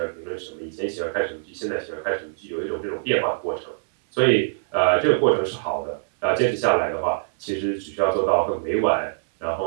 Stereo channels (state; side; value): silent; left; digital silence